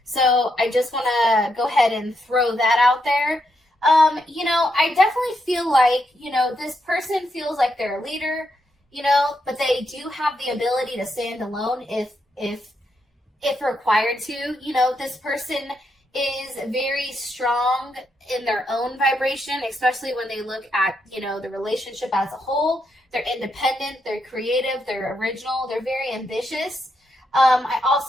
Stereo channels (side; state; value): both; normal; correlation 0.81